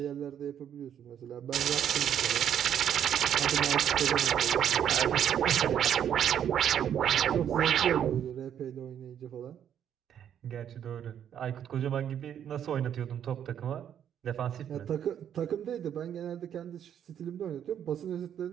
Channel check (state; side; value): quieter; left; 9.4 dB